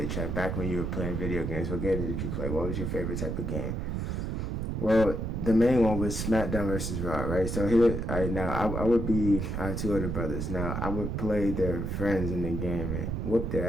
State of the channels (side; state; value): right; noise; rumble, 2 dB below the sound